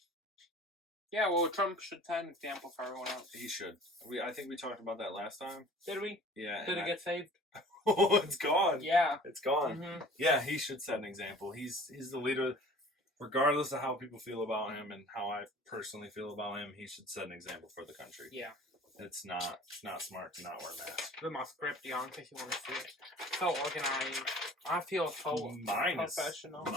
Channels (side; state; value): both; normal; correlation 0.47